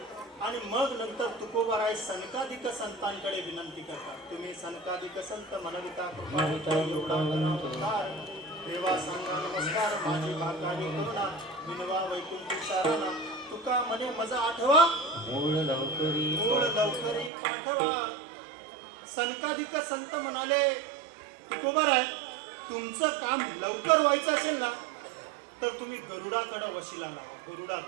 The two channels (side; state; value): left; drops out; at 17.3 s